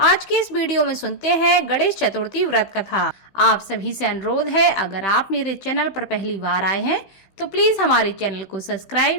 के इस वीडियो में सुनते हैं गणेश चतुर्थी व्रत कथा। आप सभी से अनुरोध है, अगर आप मेरे चैनल पर पहली बार आए हैं तो प्लीज हमारे चैनल को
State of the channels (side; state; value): right; late; 15 ms